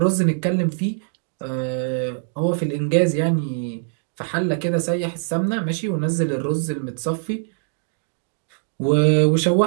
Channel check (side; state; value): left; silent; digital silence